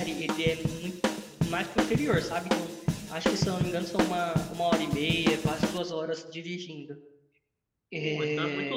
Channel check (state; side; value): identical; both; correlation 1.00